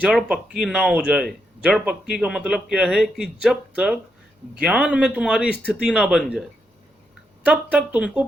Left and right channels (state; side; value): normal; both; correlation 0.81